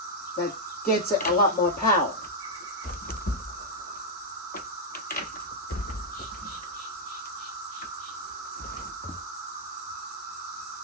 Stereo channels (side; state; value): both; normal; correlation -0.03